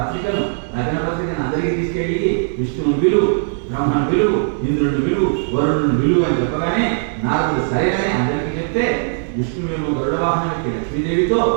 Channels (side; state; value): left; silent; digital silence